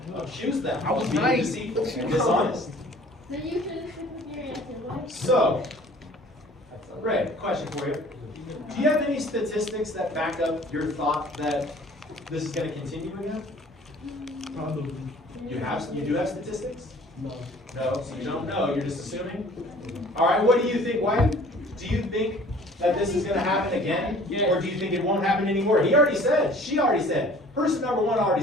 Accuse them of being deceitful and dishonest. So you should have with your answer. Why? So, Ray, question for you. Do you have any statistics that back up your thought that this is going to continue again? Probably. You do have statistics? No. No, so you don't know, you're just assuming? All right, what do you think, Wyatt? Do you think that this is going to happen again? Or do you think it won't happen anymore? He already said, she already said, person number one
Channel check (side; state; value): both; normal; correlation 0.50